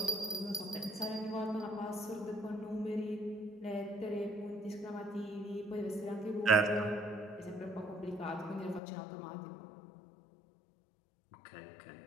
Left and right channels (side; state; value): right; drops out; at 8.8 s